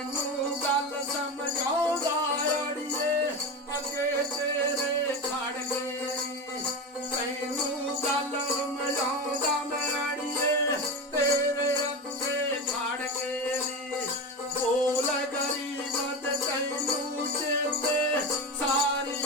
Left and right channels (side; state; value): both; normal; correlation 0.22